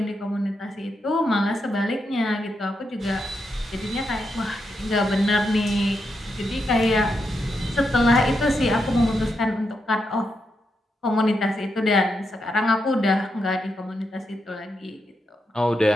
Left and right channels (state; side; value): normal; both; correlation 0.83